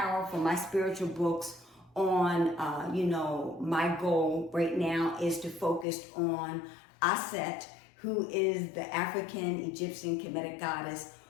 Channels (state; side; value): drops out; right; at 5.9 s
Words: from my spiritual books on, my goal right now is to focus on Aset, who is the African Egyptian Kemetic goddess